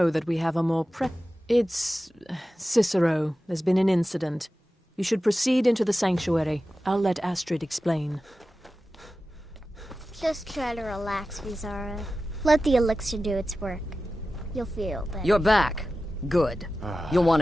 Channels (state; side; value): normal; both; correlation 0.94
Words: that we have a more It's... Cicero. There's been an incident. You should proceed into the sanctuary. I'll let Astrid explain. Just try to relax, Visara. Let the elixir do its work. You'll feel better. You're back. Good. You'll want